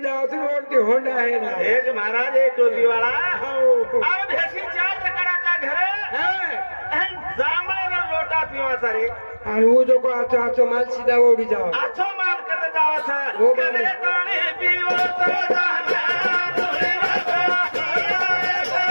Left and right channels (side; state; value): both; inverted; correlation -1.00